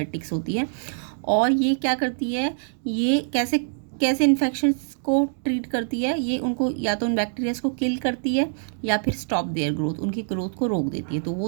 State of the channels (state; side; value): silent; left; digital silence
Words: होती है। और ये क्या करती है, ये कैसे कैसे इन्फेक्शंस को ट्रीट करती है, ये उनको या तो उन बैक्टीरियाज को किल करती है या फिर स्टॉप देयर ग्रोथ, उनकी ग्रोथ को रोक देती है। तो वो